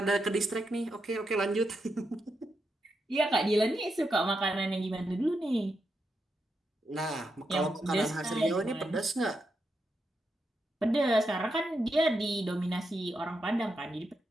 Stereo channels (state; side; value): normal; both; correlation 0.84